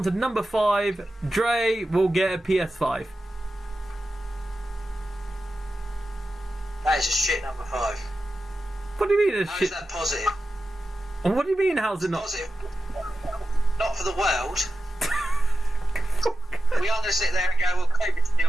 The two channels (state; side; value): normal; both; correlation 0.92